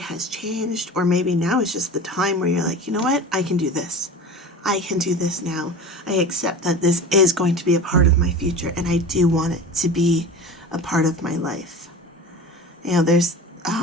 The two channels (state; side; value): normal; both; correlation 0.34